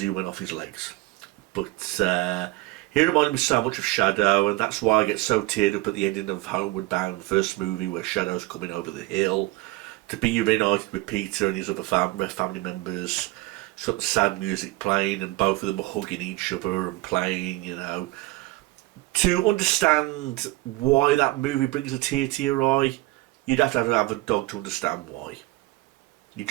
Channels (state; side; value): quieter; left; 20.0 dB